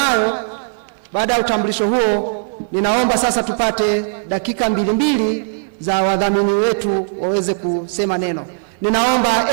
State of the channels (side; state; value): left; silent; 67 dB below the other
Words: baada ya utambulisho huo, ninaomba sasa tupate dakika mbili za wadhamini wetu waweze kusema neno. Ninaomba